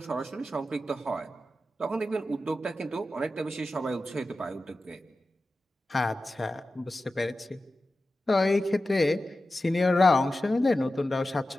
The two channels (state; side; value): normal; both; correlation 0.93